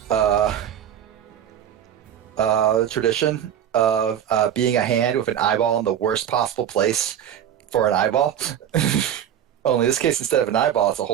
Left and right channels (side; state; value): left; quieter; 9.9 dB